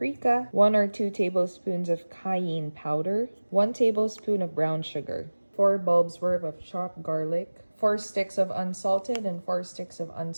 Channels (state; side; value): inverted; both; correlation -1.00